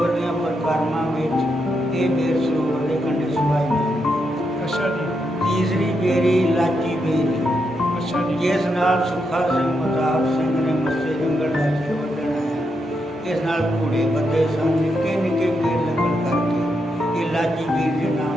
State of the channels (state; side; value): normal; both; correlation 0.82